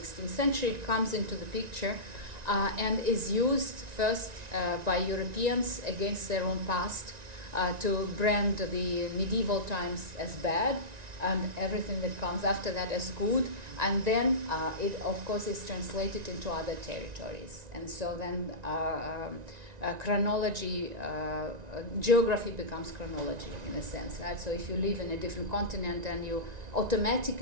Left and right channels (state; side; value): late; left; 1.9 ms